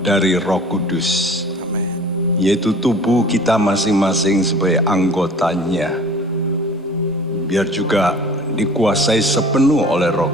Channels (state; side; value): normal; both; correlation 0.45